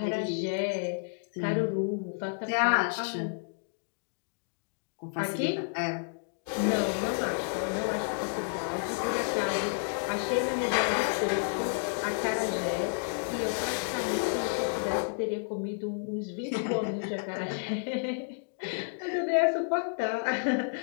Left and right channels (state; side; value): silent; right; digital silence